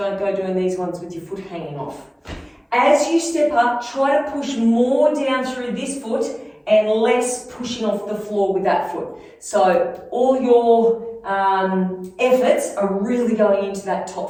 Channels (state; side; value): identical; both; correlation 1.00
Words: go doing these ones with your foot hanging off. As you step up, try to push more down through this foot and less pushing off the floor with that foot. So all your efforts are really going into that